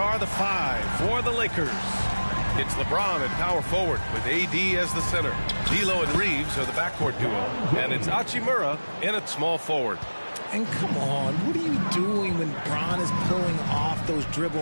the five for the Lakers. It's LeBron at power forward with AD as the center. D'Lo and Reeves are the backcourt duo. And it's Hachimura in at small forward. And come on, what are you doing when Bron is pulling off those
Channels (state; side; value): inverted; both; correlation -1.00